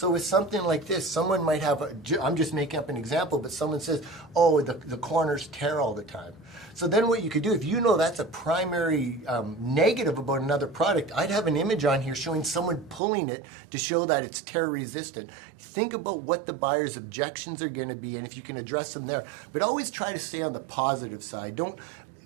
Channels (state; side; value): drops out; left; at 13.0 s